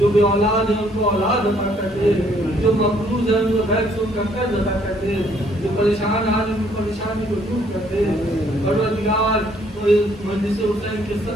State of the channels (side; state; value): both; normal; correlation 0.65